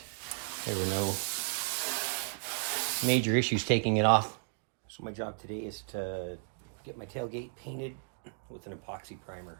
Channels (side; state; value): left; silent; digital silence